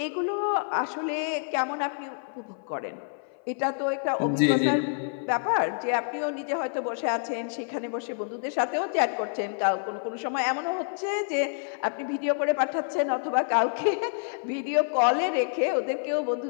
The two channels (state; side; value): silent; right; 56 dB below the other